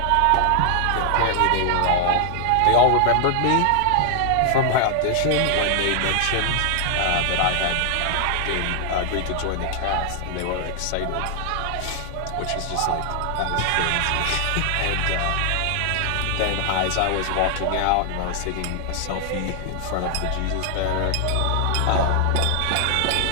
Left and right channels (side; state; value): both; different; correlation 0.00